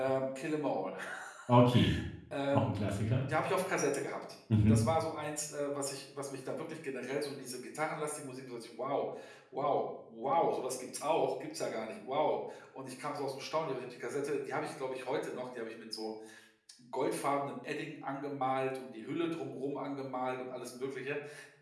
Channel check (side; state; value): both; identical; correlation 1.00